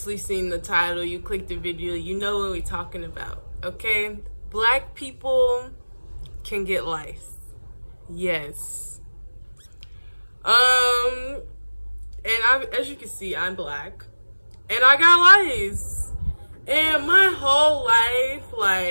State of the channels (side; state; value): both; inverted; correlation -1.00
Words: seen the title, you clicked the video, you know what we're talking about, okay? Black people can get lice. Yes. And as you can see, I'm black. And I got lice. And my whole life,